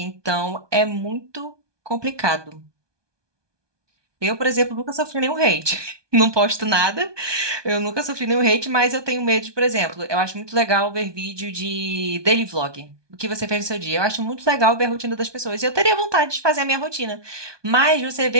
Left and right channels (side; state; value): left; late; 1.2 ms